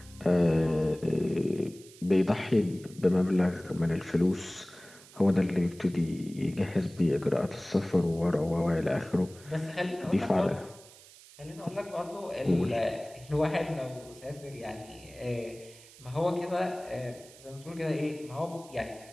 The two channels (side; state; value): right; noise; hiss, 21 dB below the sound